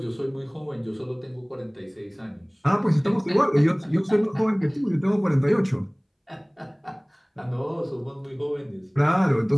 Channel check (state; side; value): identical; both; correlation 1.00